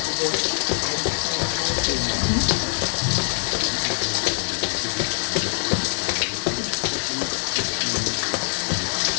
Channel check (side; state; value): right; silent; digital silence